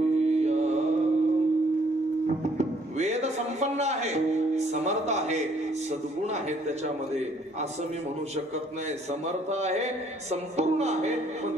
वेद संपन्न आहे, समर्थ आहे, सद्गुण आहे त्याच्यामध्ये असं मी म्हणू शकत नाही. समर्थ आहे, संपूर्ण आहे, पण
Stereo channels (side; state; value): both; normal; correlation 0.64